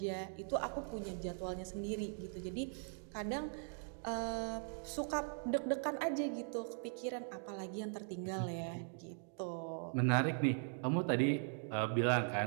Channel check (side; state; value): left; silent; 51 dB below the other